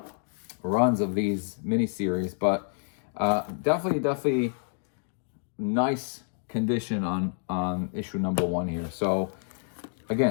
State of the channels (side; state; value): right; silent; digital silence